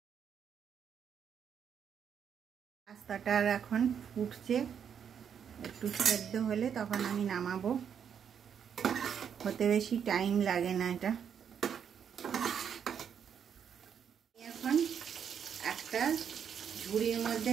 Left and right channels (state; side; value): quieter; left; 7.9 dB